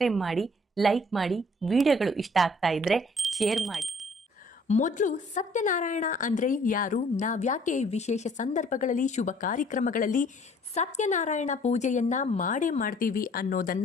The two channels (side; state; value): both; normal; correlation 0.58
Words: ಮಾಡಿ, ಲೈಕ್ ಮಾಡಿ, ವಿಡಿಯೋಗಳು ಇಷ್ಟ ಆಗ್ತಾ ಇದ್ರೆ ಶೇರ್ ಮಾಡಿ. ಮೊದಲು ಸತ್ಯನಾರಾಯಣ ಅಂದ್ರೆ ಯಾರು, ನಾವ್ಯಾಕೆ ವಿಶೇಷ ಸಂದರ್ಭಗಳಲ್ಲಿ ಶುಭ ಕಾರ್ಯಕ್ರಮಗಳಲ್ಲಿ ಸತ್ಯನಾರಾಯಣ ಪೂಜೆಯನ್ನ ಮಾಡೇ ಮಾಡ್ತೀವಿ